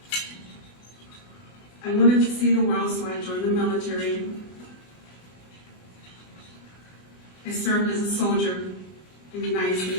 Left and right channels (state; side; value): late; right; 20 ms